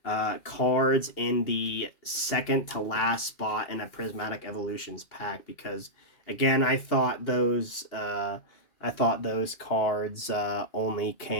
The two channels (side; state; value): right; late; 2.8 ms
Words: cards in the second to last spot in a Prismatic Evolutions pack, because again, I thought those cards only